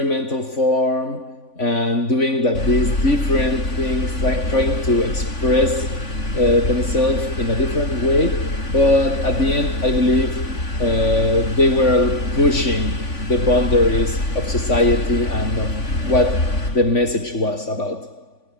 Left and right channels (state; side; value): late; right; 3.5 ms